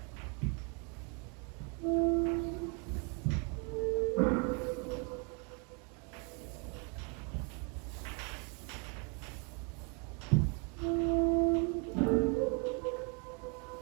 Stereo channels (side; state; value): left; quieter; 35.4 dB